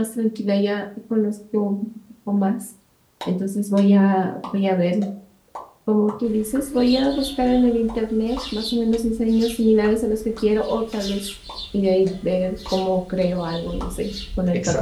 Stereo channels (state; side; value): identical; both; correlation 1.00